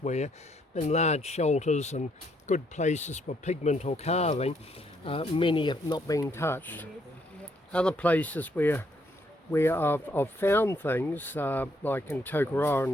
in large shelters and good places for pigment or carving. Many have not been touched. Other places where I've found things, like in Tokoroa in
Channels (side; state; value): both; normal; correlation 0.71